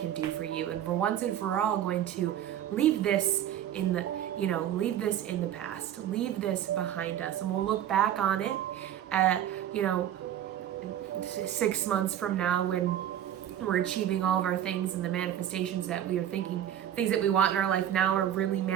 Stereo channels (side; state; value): left; quieter; 10.9 dB